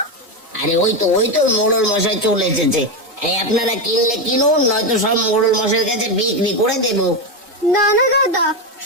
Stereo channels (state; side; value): normal; both; correlation 0.11